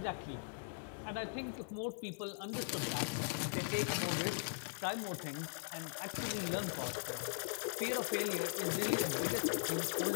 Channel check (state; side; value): silent; right; digital silence